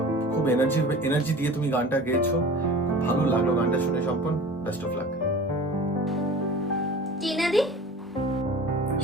খুব এনার্জি দিয়ে তুমি গানটা গেয়েছো, খুব ভালো লাগলো গানটা শুনে সম্পন। Best of luck. টিনাদি?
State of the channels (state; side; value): normal; both; correlation 0.40